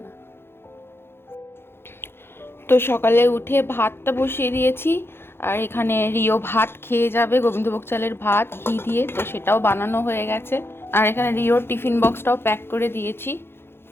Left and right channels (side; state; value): right; late; 0.11 ms